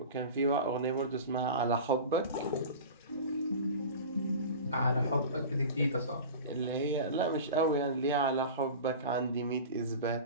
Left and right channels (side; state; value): both; inverted; correlation -0.34